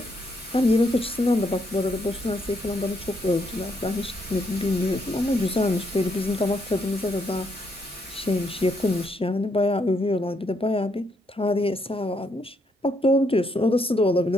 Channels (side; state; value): both; normal; correlation 0.75